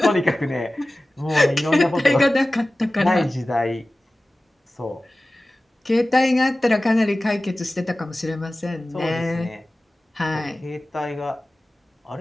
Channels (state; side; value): normal; both; correlation 0.97